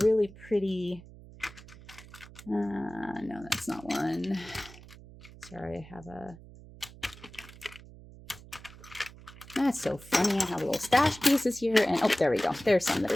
pretty, no, that's not one. Sorry, I have a, that's so funny. I have little stash pieces here, and oh, there we go. There's some that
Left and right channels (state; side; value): noise; right; hum, 19 dB below the sound